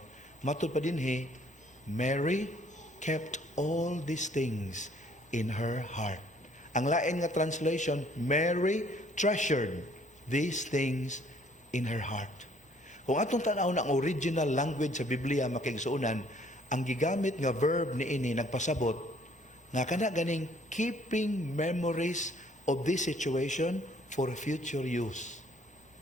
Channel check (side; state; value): both; normal; correlation 0.61